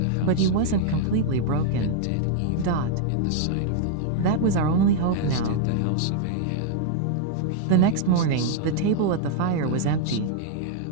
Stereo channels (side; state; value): both; different; correlation -0.01